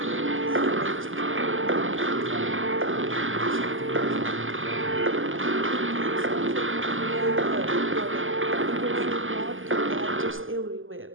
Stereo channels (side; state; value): left; late; 0.58 ms